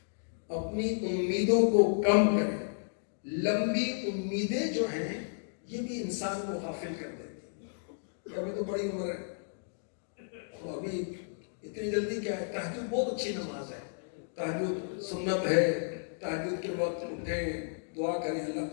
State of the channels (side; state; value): right; silent; digital silence